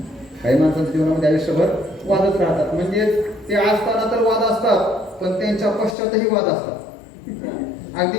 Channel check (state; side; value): drops out; right; at 6.0 s